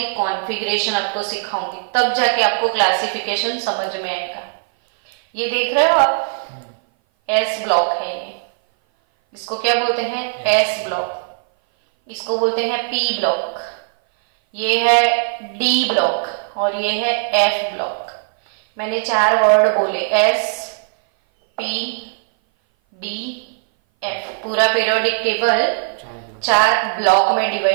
कॉन्फ़िगरेशन आपको सिखाऊंगी, तब जाके आपको क्लासिफिकेशन समझ में आएगा। ये देख रहे हो आप, एस ब्लॉक है ये, इसको क्या बोलते हैं? S block. इसको बोलते हैं पी ब्लॉक, ये है डी ब्लॉक, और ये है एफ ब्लॉक। मैंने 4 वर्ड बोले, एस पी डी एफ। पूरा पीरियोडिक टेबल 4 ब्लॉक में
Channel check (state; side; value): silent; left; 58 dB below the other